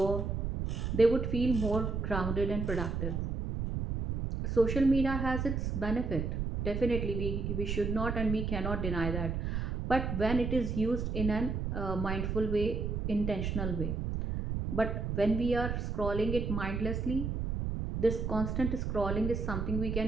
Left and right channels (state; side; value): noise; right; rumble, 2 dB below the sound